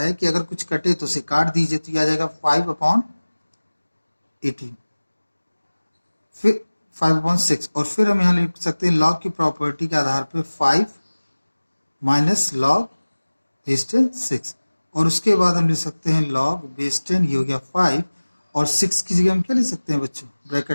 कि अगर कुछ कटे तो उसे काट दीजिए, तो ये आ जाएगा 5 अपॉन 18, फिर 5 अपॉन 6 और फिर हम यहाँ लिख सकते हैं लॉग की प्रॉपर्टी के आधार पे 5 माइनस लॉग बेस 10 6 और उसके बाद हम लिख सकते हैं लॉग बेस 10, ये हो गया 5 और 6 की जगह हम क्या लिख सकते हैं बच्चों,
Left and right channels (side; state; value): both; inverted; correlation -1.00